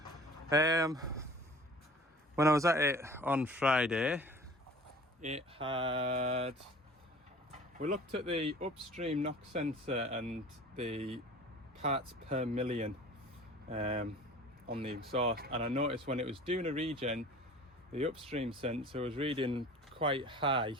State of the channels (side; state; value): both; normal; correlation 0.44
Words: When I was at it on Friday, we looked at the upstream knock sensor and the parts per million on the exhaust, and I noticed when it was doing a regen, the upstream sensor was reading quite high.